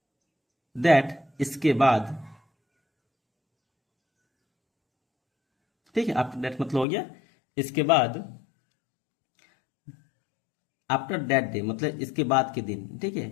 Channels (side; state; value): right; drops out; at 6.9 s